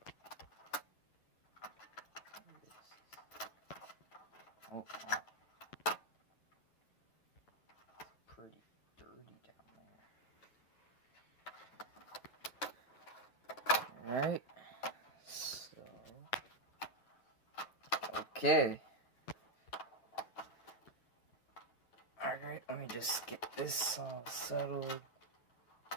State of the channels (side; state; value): right; late; 8.7 ms